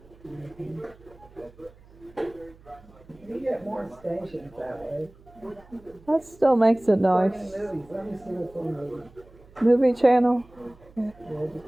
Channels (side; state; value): right; noise; hum, 25 dB below the sound